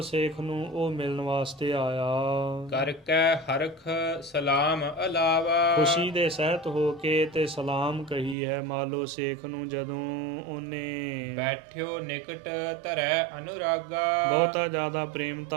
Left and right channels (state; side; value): drops out; left; at 8.3 s